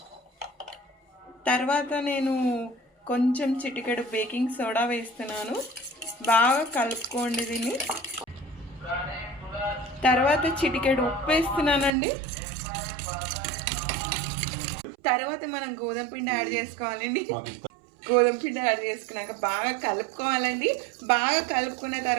తర్వాత నేను కొంచెం చిటికెడు బేకింగ్ సోడా వేస్తున్నాను. బాగా కలుపుకోండి దీన్ని. తర్వాత చిటికెడు ఉప్పు వేస్తున్నానండి. తర్వాత మనం గోధుమ పిండి యాడ్ చేసుకోవాలండి. గోధుమ పిండి యాడ్ చేసుకున్నాక బాగా కలుపుకోవాలండి. బాగా కలుపుకున్న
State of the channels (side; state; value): left; drops out; at 11.9 s